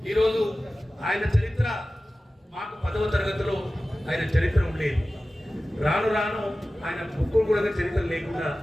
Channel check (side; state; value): both; normal; correlation 0.96